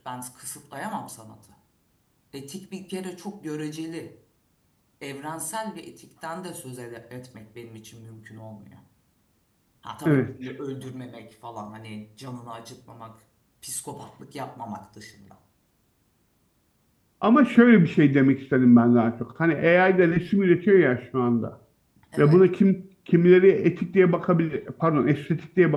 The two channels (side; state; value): both; identical; correlation 1.00